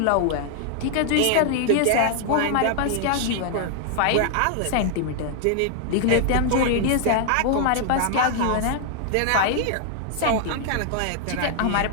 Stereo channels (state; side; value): different; both; correlation 0.00